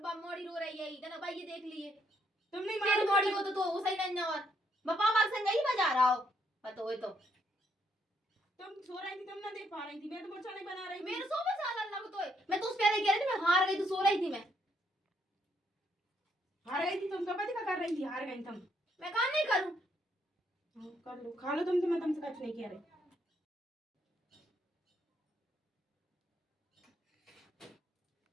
मोड़ी रो रही है इतना भाई, ये देख लिए तुम नहीं तेरी मारो मोड़ी को तो वो सही नहीं। और पापा संग ही बजा रहा हो पता हो तो तुम सो रही थी, तुम ना देख पा रही थी, मैं तो मुर्चा नहीं बना रही थी। मेरे सो में साल लग तो है। मैं तो उस पहले कह रही थी मैं हार गई, तो सो रही थी मैं। हार गई थी तुम, कब क्या कर रही थी? हार गई तुम। मैं काम नहीं करूं। कर लो, खा लो तुम, तो मैं तुमसे कुछ नहीं कह रही।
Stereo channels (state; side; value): normal; both; correlation 0.73